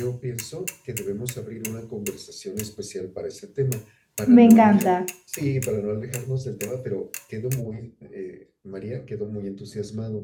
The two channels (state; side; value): identical; both; correlation 1.00